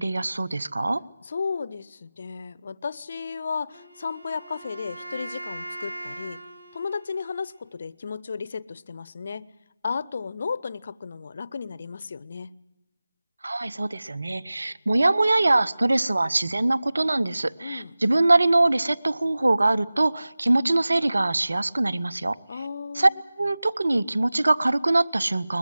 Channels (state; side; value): inverted; both; correlation -0.97